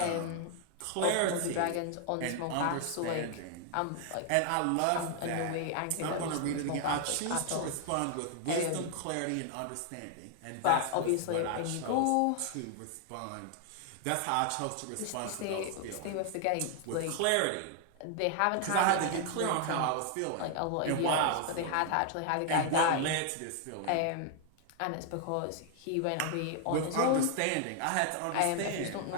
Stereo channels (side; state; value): both; different; correlation 0.00